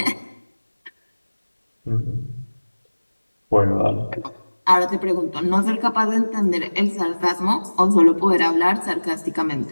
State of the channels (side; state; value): both; inverted; correlation -1.00